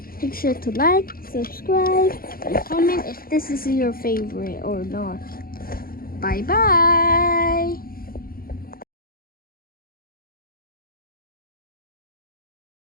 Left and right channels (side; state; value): right; late; 0.42 ms